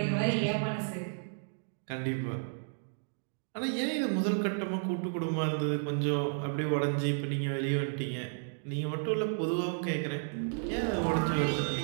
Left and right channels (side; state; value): left; silent; digital silence